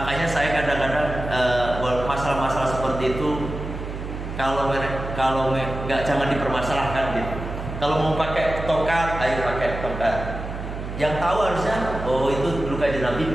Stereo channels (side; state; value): right; noise; hum, 7 dB below the sound